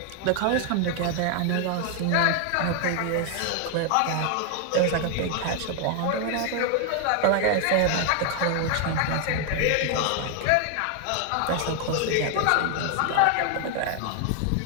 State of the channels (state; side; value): different; both; correlation 0.00